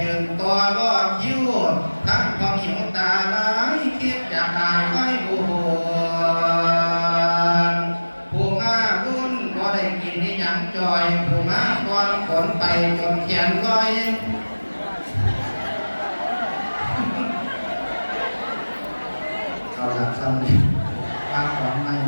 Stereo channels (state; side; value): inverted; both; correlation -1.00